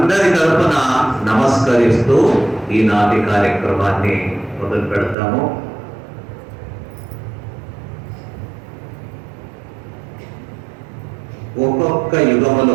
తరపున నమస్కరిస్తూ ఈనాటి కార్యక్రమాన్ని మొదలు పెడతాము. ఒక్కొక్క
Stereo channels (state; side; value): drops out; left; at 5.2 s